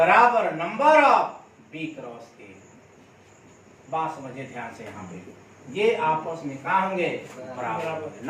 number of B cross A. बात समझिए ध्यान से, यहाँ पे ये आपस में कहा होंगे? बराबर।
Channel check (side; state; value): both; identical; correlation 1.00